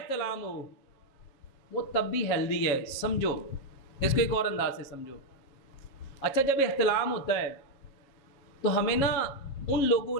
ہو، وہ تب بھی ہیلدی ہے۔ سمجھو اس کو ایک اور انداز سے سمجھو۔ اچھا، جب احتلام ہوتا ہے تو ہمیں نا ان لوگوں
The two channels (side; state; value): right; late; 7.3 ms